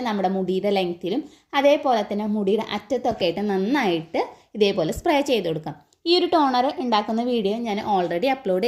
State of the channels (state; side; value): identical; both; correlation 1.00